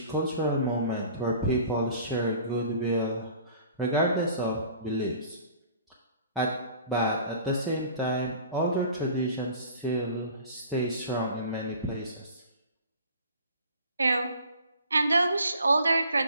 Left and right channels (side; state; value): both; inverted; correlation -0.48